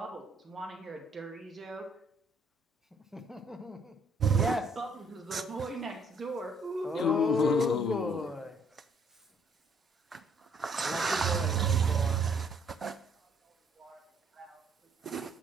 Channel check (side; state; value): both; normal; correlation 0.65